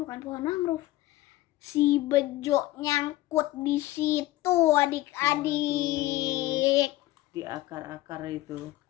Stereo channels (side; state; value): right; quieter; 16.8 dB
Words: pohon mangrove. Si Bejo nyangkut di situ adik-adik. Di akar-akar itu.